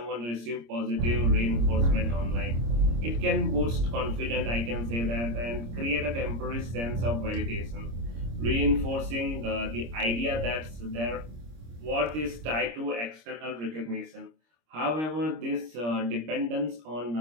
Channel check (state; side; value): late; left; 26 ms